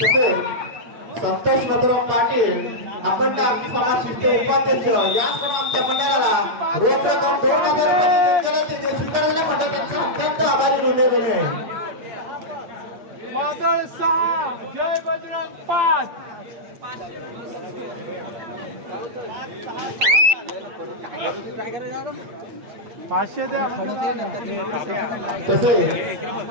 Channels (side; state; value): left; late; 8.4 ms